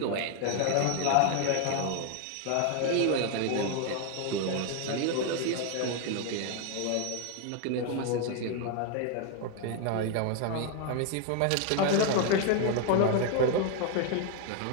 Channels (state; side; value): different; both; correlation 0.01